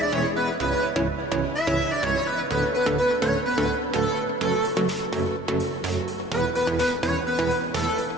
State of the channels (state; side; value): normal; both; correlation 0.55